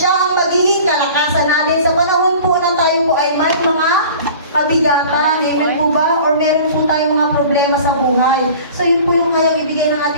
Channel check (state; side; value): inverted; both; correlation -0.43